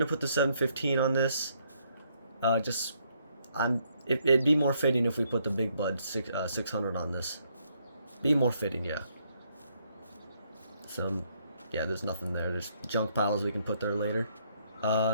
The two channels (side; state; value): both; inverted; correlation -0.72